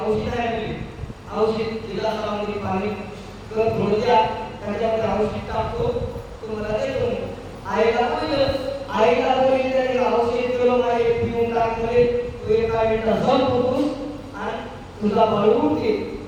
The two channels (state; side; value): identical; both; correlation 1.00